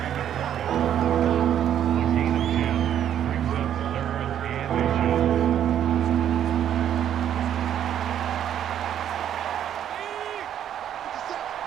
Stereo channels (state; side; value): quieter; left; 10.1 dB